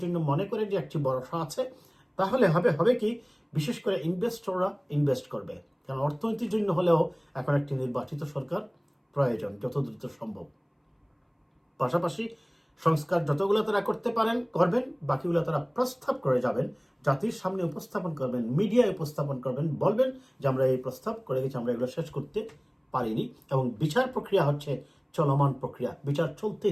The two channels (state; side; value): identical; both; correlation 1.00